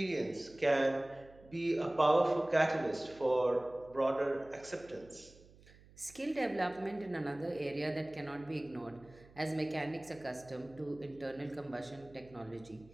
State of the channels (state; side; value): noise; right; hum, 24 dB below the sound